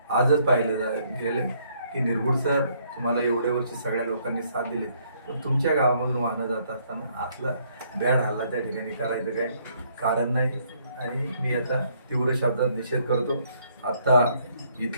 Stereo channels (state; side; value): inverted; both; correlation -0.68